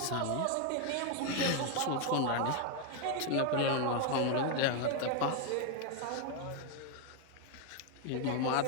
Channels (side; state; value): both; different; correlation 0.01